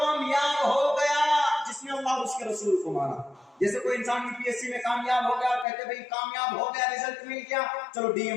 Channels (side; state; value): right; drops out; at 5.7 s